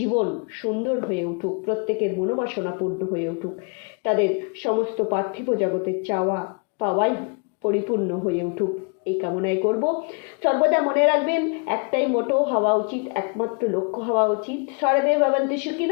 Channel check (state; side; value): quieter; right; 35.6 dB